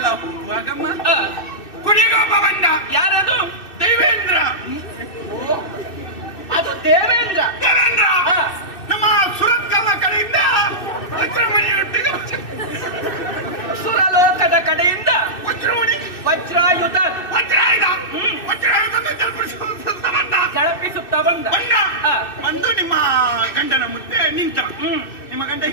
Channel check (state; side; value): late; right; 2.6 ms